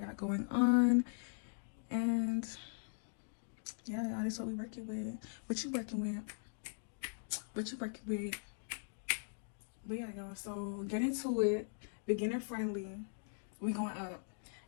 going on. And yeah, y'all, this is what we working with. What you working with? But yeah, y'all, so get into it. Beginner friendly. We going up.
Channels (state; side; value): silent; right; digital silence